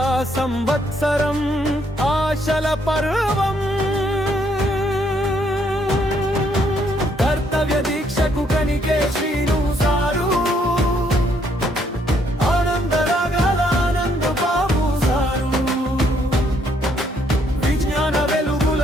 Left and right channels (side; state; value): both; normal; correlation 0.70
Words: సంవత్సరం ఆశల పర్వం. కర్తవ్య దీక్షకు కనికే శ్రీను సారు, ఆనంద రాగాల ఆనంద బాబు సారు, విజ్ఞాన వెలుగుల